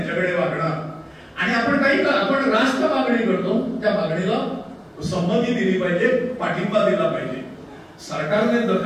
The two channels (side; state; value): both; identical; correlation 1.00